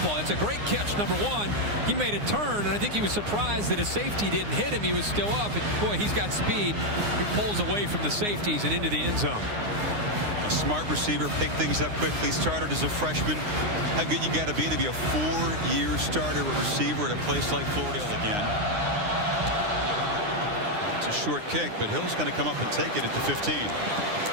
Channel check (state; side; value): late; left; 9.7 ms